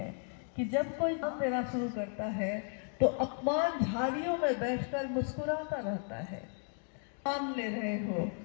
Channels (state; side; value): silent; right; 55 dB below the other